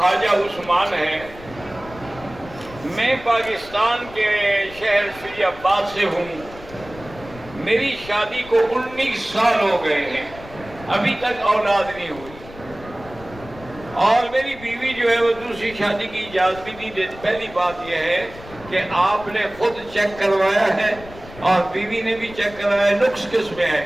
عثمان ہے، میں پاکستان کے شہر فیض آباد سے ہوں، میری شادی کو 19 سال ہو گئے ہیں، ابھی تک اولاد نہیں ہوئی، اور میری بیوی جو ہے وہ دوسری شادی کی اجازت بھی نہیں دیتی۔ پہلی بات یہ ہے کہ آپ نے خود چیک کروایا ہے اور بیوی نے بھی چیک کروایا، نقص کس میں ہے؟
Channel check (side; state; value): left; noise; rumble, 17 dB below the sound